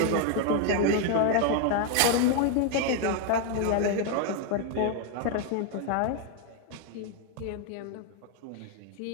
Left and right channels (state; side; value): different; both; correlation 0.01